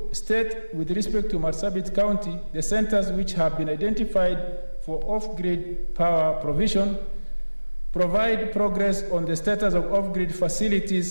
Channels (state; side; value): inverted; both; correlation -1.00